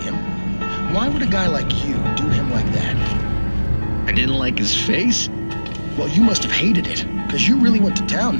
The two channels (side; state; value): both; inverted; correlation -1.00